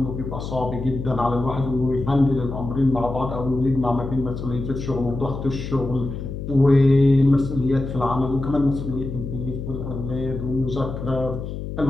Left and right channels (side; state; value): left; noise; hum, 7 dB below the sound